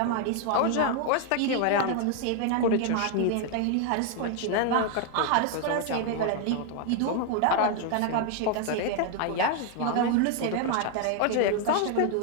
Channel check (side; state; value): both; different; correlation 0.00